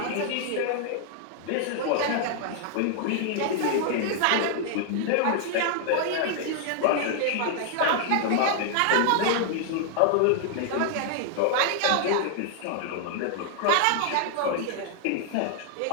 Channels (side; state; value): both; different; correlation 0.00